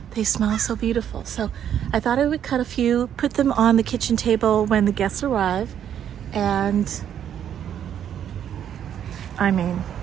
they smell so beautiful. So I thought I would cut a few, put them on the kitchen table when the guests arrive, and I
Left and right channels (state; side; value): quieter; left; 9.5 dB